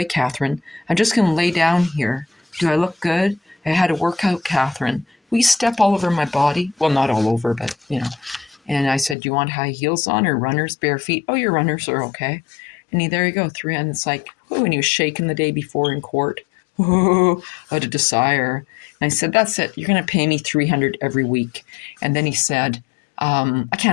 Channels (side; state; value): right; drops out; at 9.2 s